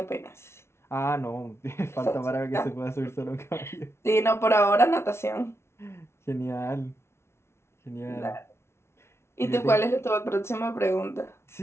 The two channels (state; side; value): late; right; 0.13 ms